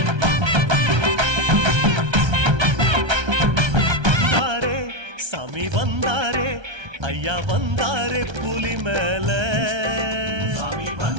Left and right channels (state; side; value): late; left; 1.3 ms